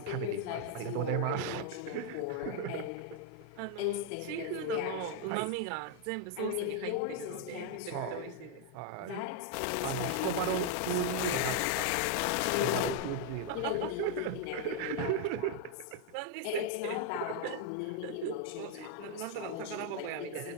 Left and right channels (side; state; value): both; different; correlation 0.00